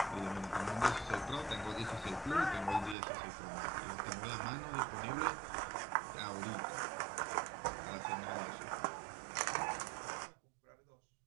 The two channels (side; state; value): left; drops out; at 3.0 s